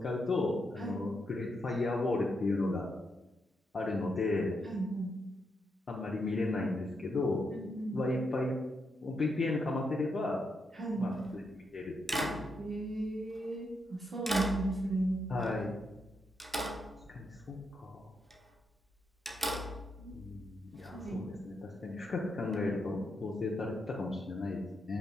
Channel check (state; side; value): normal; both; correlation 0.81